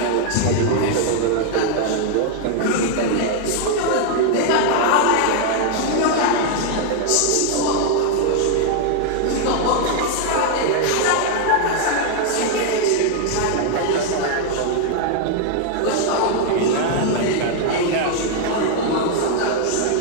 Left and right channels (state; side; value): different; both; correlation 0.00